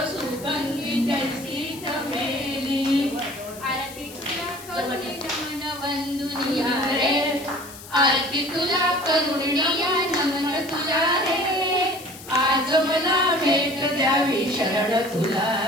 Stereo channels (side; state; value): left; noise; hiss, 16 dB below the sound